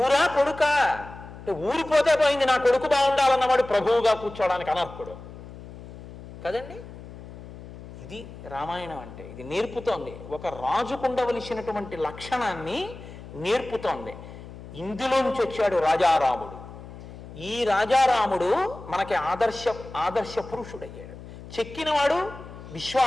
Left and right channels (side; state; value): left; noise; hum, 15 dB below the sound